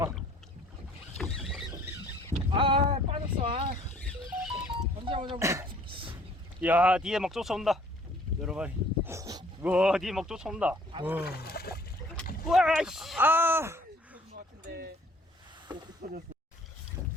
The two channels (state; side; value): normal; both; correlation 0.57